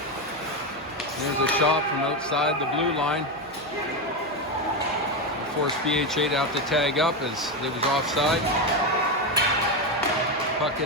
There's a shot from outside the blue line. Forced PHA to have to tag up as it was offside. Puck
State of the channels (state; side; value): noise; right; hum, 21 dB below the sound